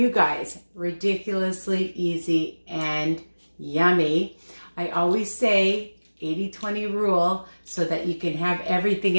guys. Ridiculously easy and yummy. I always say 80-20 rule so that you can have everything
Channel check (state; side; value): inverted; both; correlation -1.00